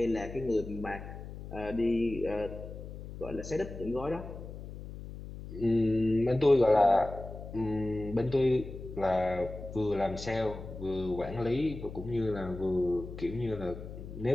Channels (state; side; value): noise; left; hum, 11 dB below the sound